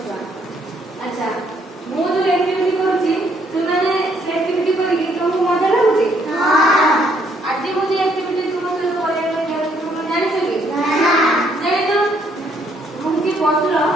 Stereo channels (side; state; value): both; normal; correlation 0.69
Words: अच्छा मु जो एक्टिविटी करूची तुमने से एक्टिविटी करी तुमको मजा लागुची? हां। आज मु जो एक्टिविटी तुम से करे तुम जानि छ कि? ना। जानि तो मु की बसलो